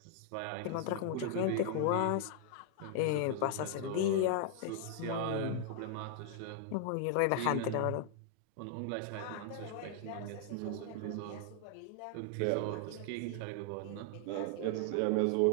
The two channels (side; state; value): both; different; correlation 0.00